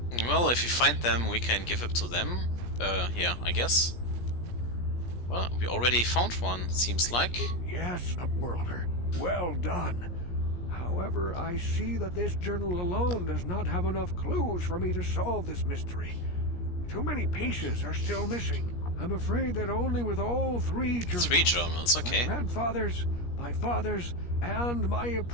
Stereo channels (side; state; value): right; late; 17 ms